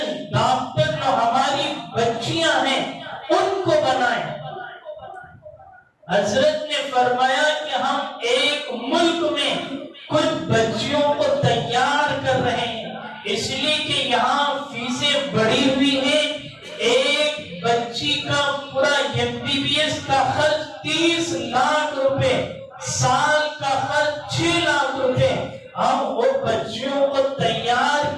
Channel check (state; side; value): identical; both; correlation 1.00